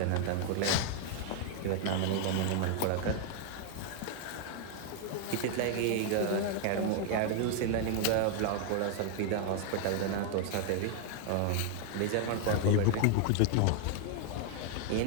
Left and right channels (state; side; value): different; both; correlation 0.00